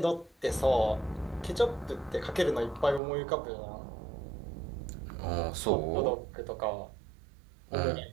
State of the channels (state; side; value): drops out; left; at 3.0 s